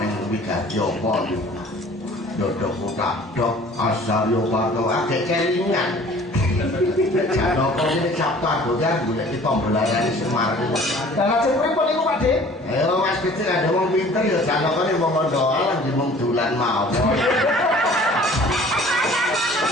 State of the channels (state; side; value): normal; both; correlation 0.50